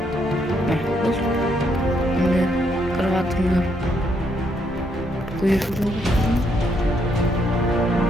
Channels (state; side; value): normal; both; correlation 0.74